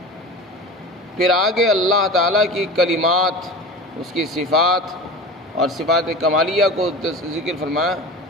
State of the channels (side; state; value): both; normal; correlation 0.33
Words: پھر آگے اللہ تعالیٰ کی کلمات، اس کی صفات اور صفات کمالیہ کو ذکر فرمایا۔